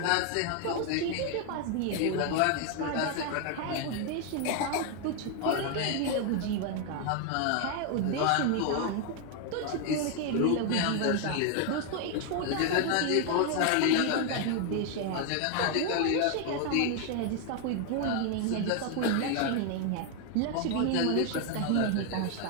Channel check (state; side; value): different; both; correlation 0.01